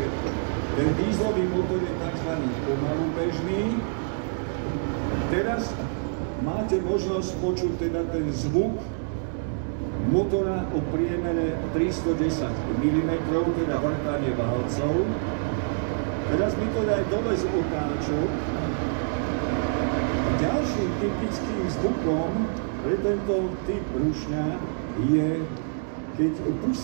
ten dieselový motor je tzv. Pomalu bežný. Teraz máte možnosť počuť teda ten zvuk motora o priemere 310 mm, teda vrtanie válcov. Teraz mi to daj dole z otáčok. Ďalším typickým zvukom pre tento typ rušňa je, keď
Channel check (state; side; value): silent; left; digital silence